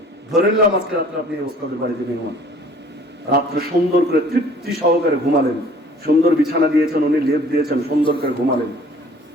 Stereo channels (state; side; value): normal; both; correlation 0.52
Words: ধরে নিলাম আজকে রাত্রে আপনি এই ওস্তাদের বাড়িতে মেহমান। রাত্রে সুন্দর করে তৃপ্তি সহকারে ঘুমালেন, সুন্দর বিছানা দিয়েছেন, উনি লেপ দিয়েছেন, সুন্দর করে ঘুমালেন।